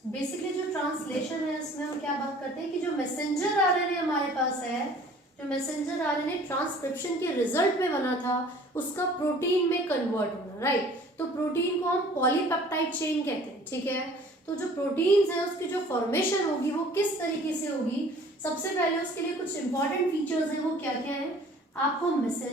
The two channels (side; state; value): both; normal; correlation 0.51